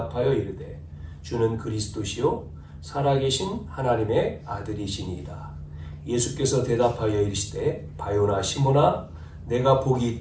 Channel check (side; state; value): both; identical; correlation 1.00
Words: 이르되 주는 그리스도시요 살아계신 하나님의 아들이시니이다. 예수께서 대답하여 이르시되 바요나 시몬아 내가 복이